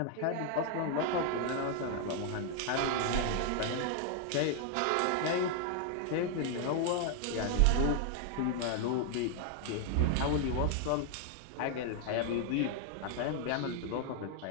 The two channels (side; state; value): both; different; correlation 0.00